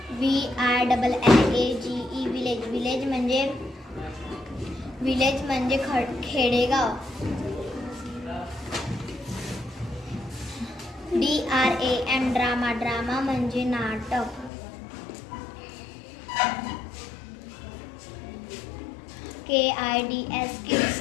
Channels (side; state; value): right; drops out; at 14.5 s